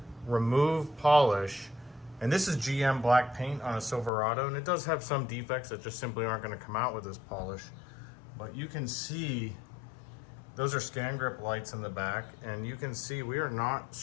remove polish, and this is GM black paint on a Silverado, and it does have some defects that just simply aren't going to come out with this polish, but you can see those are scan grip lights in the back, and you can see we are not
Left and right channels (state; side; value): drops out; right; at 4.1 s